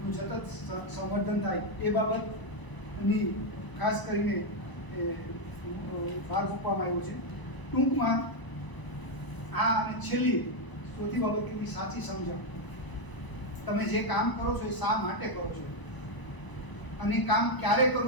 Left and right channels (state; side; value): late; right; 1.0 ms